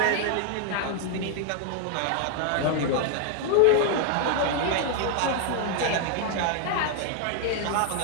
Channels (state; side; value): different; both; correlation 0.00